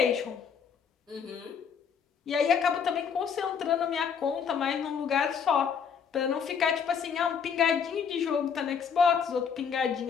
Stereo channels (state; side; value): quieter; right; 6.8 dB